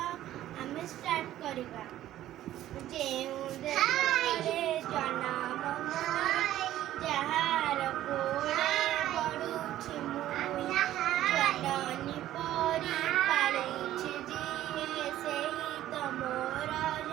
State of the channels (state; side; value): quieter; left; 13.3 dB